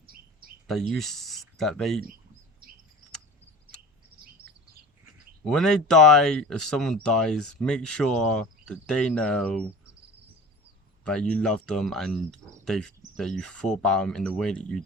that they, when they die, if someone dies, make sure that they know that you love them and that you thought about them in the way that you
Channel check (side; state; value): both; normal; correlation 0.38